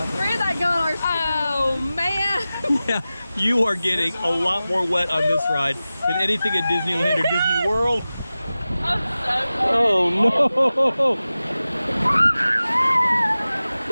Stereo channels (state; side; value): inverted; both; correlation -0.96